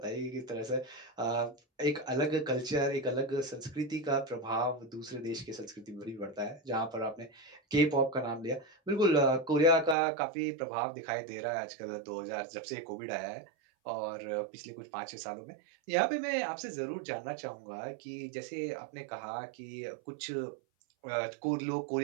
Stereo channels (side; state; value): left; drops out; at 10.0 s